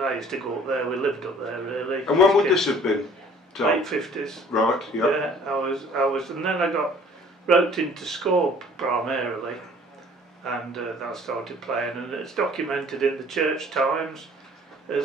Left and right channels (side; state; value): both; normal; correlation 0.53